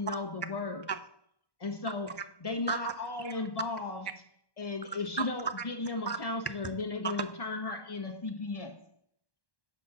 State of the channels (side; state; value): right; late; 1.1 ms